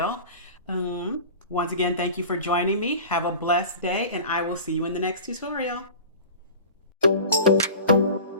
Once again, thank you for joining me. Have a blessed day, and I will see you in the next tutorial.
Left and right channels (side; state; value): both; inverted; correlation -0.37